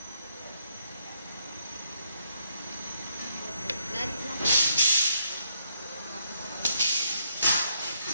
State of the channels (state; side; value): inverted; both; correlation -0.73